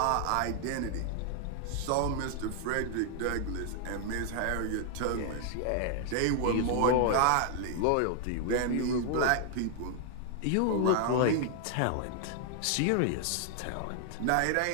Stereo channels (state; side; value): different; both; correlation 0.00